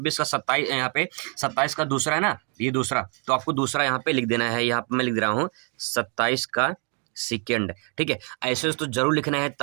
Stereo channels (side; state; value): left; quieter; 38.0 dB